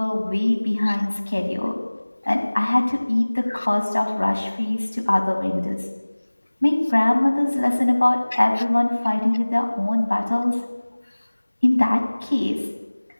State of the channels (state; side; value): inverted; both; correlation -1.00